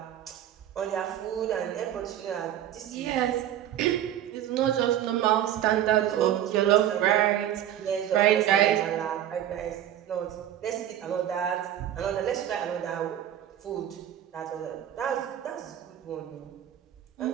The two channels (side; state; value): left; quieter; 11.3 dB